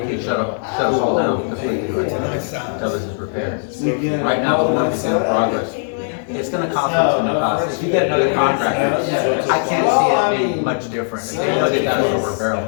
shut us all down completely until this is repaired. Right now, the work is in progress. It's gonna cost us some cost. If you get another contractor, I can't see it being much different. If they know they got us over a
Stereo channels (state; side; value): silent; right; 63 dB below the other